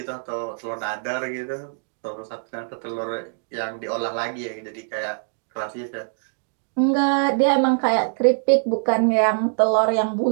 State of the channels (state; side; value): silent; left; digital silence